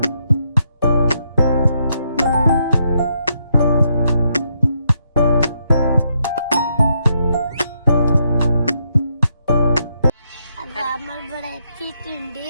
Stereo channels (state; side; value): inverted; both; correlation -0.78